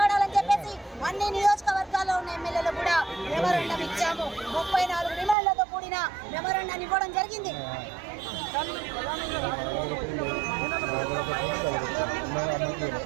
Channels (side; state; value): left; drops out; at 5.4 s